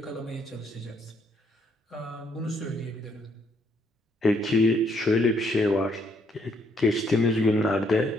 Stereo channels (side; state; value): both; normal; correlation 0.71